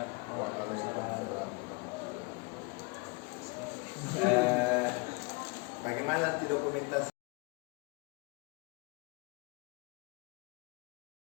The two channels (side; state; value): right; quieter; 30.3 dB